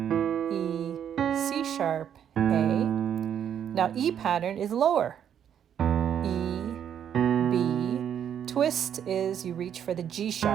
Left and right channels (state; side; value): quieter; left; 9.1 dB